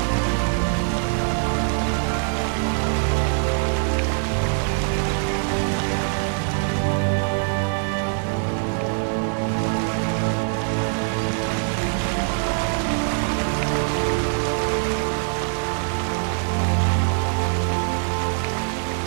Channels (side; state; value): left; silent; 57 dB below the other